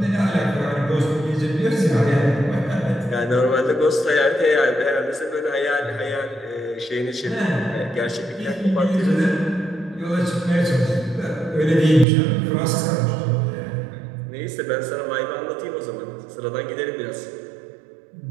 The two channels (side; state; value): left; drops out; at 12.1 s